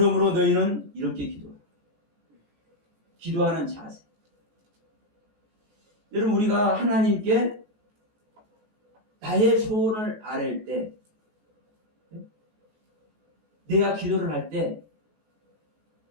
너희는 이렇게 기도하라. 기도하는 자세. 여러분 우리가 하나님께 나의 소원을 아뢰을 때, 내가 기도를 할 때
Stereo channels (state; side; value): late; left; 14 ms